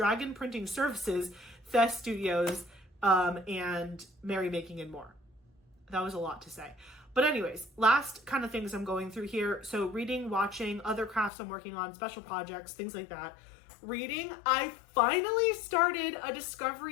Printing Services, Thes Studios, and Merry Making and More. That was a lot to say. But anyways, last kind of things I'm going through here. So reading, watching, other crafts I'm working on, special projects, things like that. Reading, I finally started A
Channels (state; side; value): drops out; right; at 11.3 s